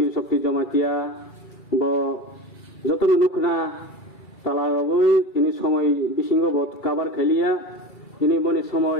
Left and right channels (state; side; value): late; right; 2.3 ms